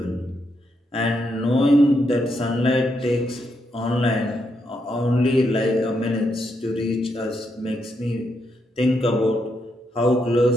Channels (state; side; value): normal; both; correlation 0.80